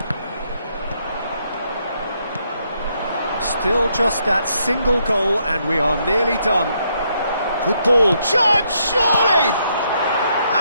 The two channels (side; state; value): both; inverted; correlation -0.75